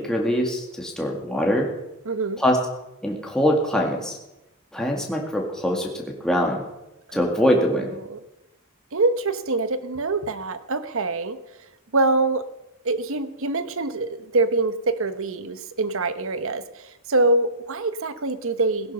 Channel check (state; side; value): normal; both; correlation 0.09